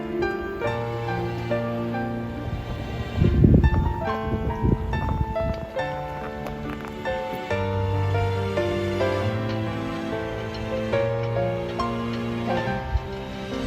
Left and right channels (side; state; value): both; identical; correlation 1.00